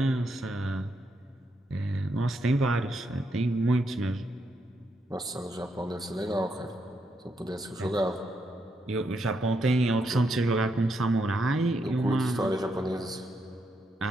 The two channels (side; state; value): both; normal; correlation 0.79